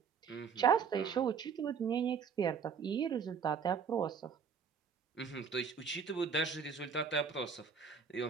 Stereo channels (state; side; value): quieter; left; 6.3 dB